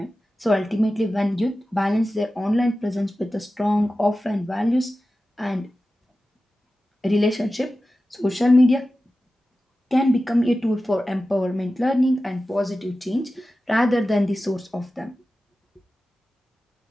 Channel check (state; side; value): normal; both; correlation 0.94